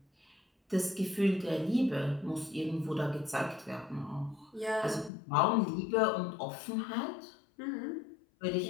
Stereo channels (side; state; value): right; drops out; at 5.1 s